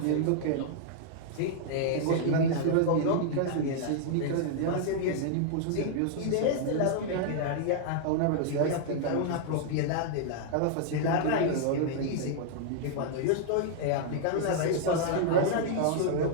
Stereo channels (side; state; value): both; different; correlation -0.01